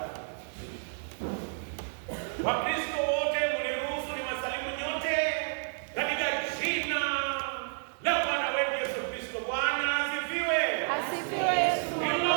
Wakristo wote mniruhusu niwasalimu nyote katika jina la Bwana wetu Yesu Kristo. Bwana asifiwe. Asifiwe Yesu.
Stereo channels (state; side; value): silent; left; digital silence